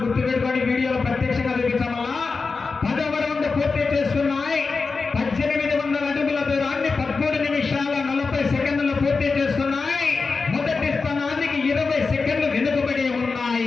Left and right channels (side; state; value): right; quieter; 4.4 dB